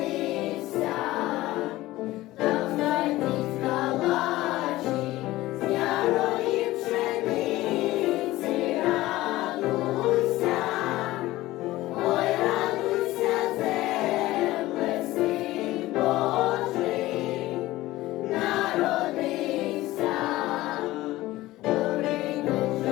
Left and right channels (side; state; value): right; quieter; 17.3 dB